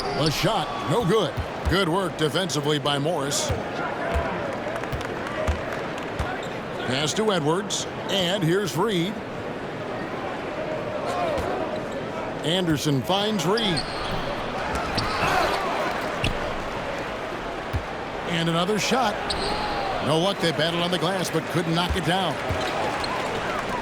The shot, no good. Good work defensively by Morris. Pass to Edwards. And here's Reed. Anderson finds Reed. And another shot. No luck. They battled on the glass but couldn't knock it down.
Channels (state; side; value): identical; both; correlation 1.00